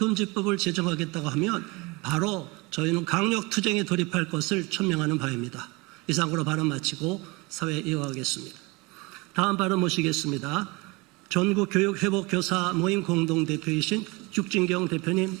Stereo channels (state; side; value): quieter; left; 25.5 dB